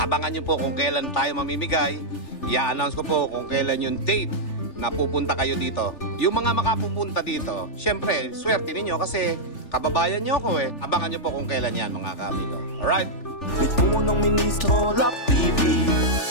nyo po kung kailan tayo mamimigay. I-announce ko po kung kailan yung date na pupunta kayo dito. Yung mga makapupunta dito, syempre, swerte ninyo kasi kababayan nyo ako Abangan nyo po kung kailan yan mga kamigo. Alright? With Punong Ministro, Love TV.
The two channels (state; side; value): late; right; 3.4 ms